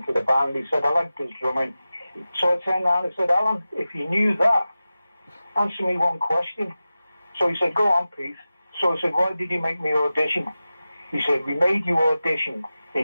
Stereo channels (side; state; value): both; inverted; correlation -0.95